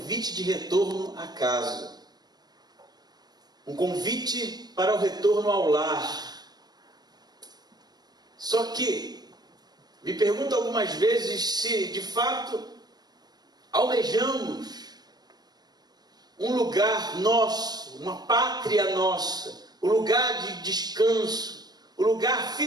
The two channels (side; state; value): left; late; 0.19 ms